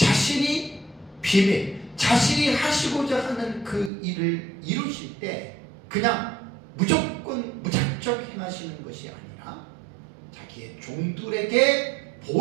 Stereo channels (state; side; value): drops out; left; at 3.9 s